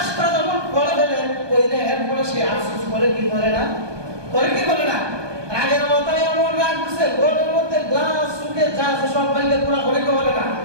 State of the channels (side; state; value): left; late; 1.2 ms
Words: যখন করে ফেলে কইলে এরপরে সে আফসোস করে কি করে না, রাগের মাথায় এমন রাগ উঠছে ঘরের মধ্যে গ্লাস সুকে যা আছে সব ভাঙলে পুরা করে কে বলে না,